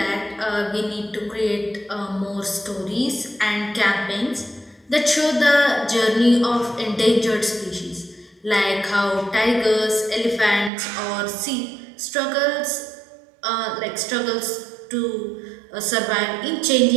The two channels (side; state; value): left; drops out; at 10.7 s